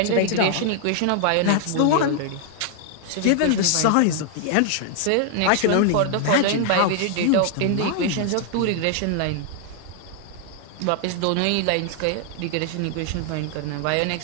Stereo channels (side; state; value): both; different; correlation 0.00